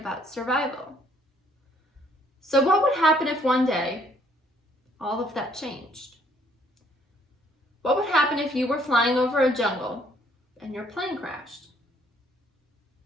survival. So what would happen if one day all of that changed? What would happen if you were flying over a jungle and your plane crashed?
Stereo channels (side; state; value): both; normal; correlation 0.65